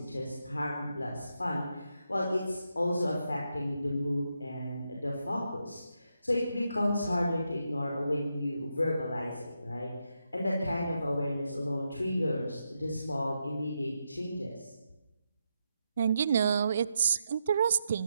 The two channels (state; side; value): inverted; both; correlation -0.84